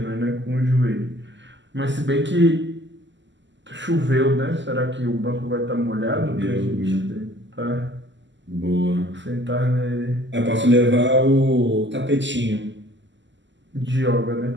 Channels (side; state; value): left; late; 0.54 ms